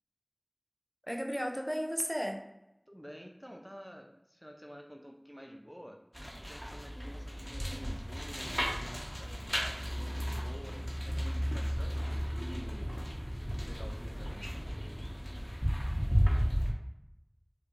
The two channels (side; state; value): both; identical; correlation 1.00